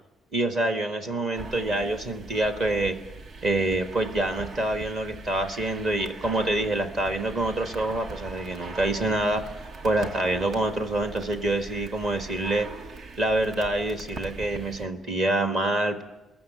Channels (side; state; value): both; normal; correlation 0.70